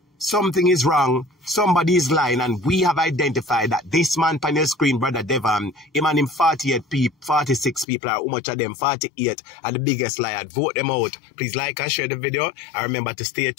something is wrong, somebody is lying, and we have identified that this man on your screen, Brother Devon, him and him 46 people, or how much of them, 48, are the biggest liar. Vote them out. Please like and share the video, and remember to stay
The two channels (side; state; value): right; drops out; at 7.9 s